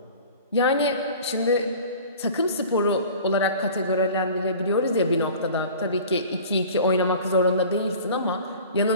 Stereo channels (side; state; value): both; inverted; correlation -0.43